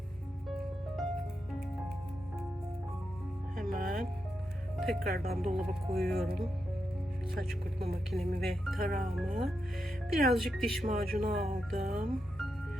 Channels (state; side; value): normal; both; correlation 0.86